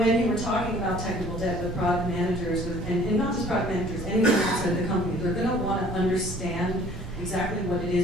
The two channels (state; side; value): normal; both; correlation 0.53